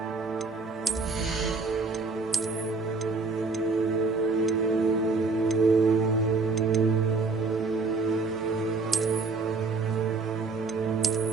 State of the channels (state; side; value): quieter; left; 4.1 dB